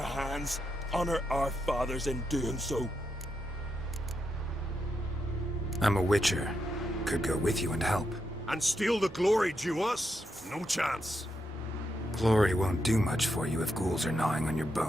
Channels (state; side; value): normal; both; correlation 0.83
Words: Honor our fathers in doing so. I'm a witcher. Could go with you and help. And steal the glory due us? No chance. Glory won't do much for you if ghouls are gnawing on your